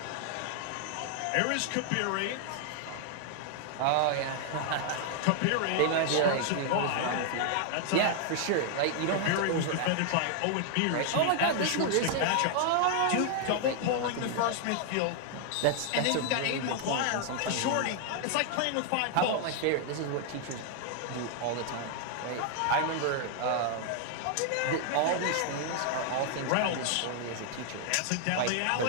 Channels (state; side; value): different; both; correlation 0.00